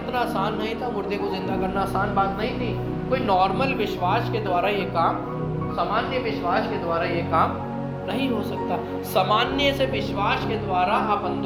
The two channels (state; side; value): identical; both; correlation 1.00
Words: आसान नहीं था, मुर्दे को जिंदा करना आसान बात नहीं थी। कोई नॉर्मल विश्वास के द्वारा ये काम, सामान्य विश्वास के द्वारा ये काम नहीं हो सकता। सामान्य से विश्वास के द्वारा आप